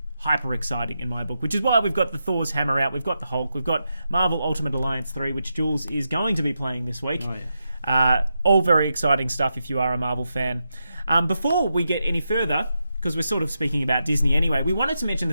hyper exciting in my book, which is why we've got the Thor's hammer out, we've got the Hulk, we've got Marvel Ultimate Alliance 3, which Jules is going to be playing this week. Oh, yeah. All very exciting stuff if you are a Marvel fan. Before we get any further, because we're sort of speaking about Disney anyway, we wanted to mention the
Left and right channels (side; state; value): both; inverted; correlation -0.86